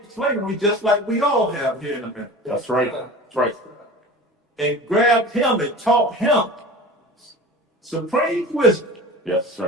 just like we all have here in America, That's right. That's right. and grabbed him and taught him supreme wisdom. Yes,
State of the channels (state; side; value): normal; both; correlation 0.36